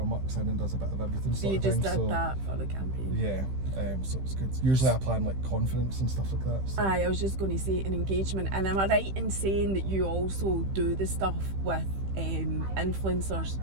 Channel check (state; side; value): late; left; 15 ms